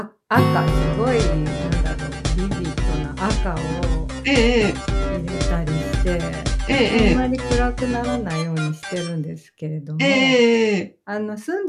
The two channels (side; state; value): both; identical; correlation 1.00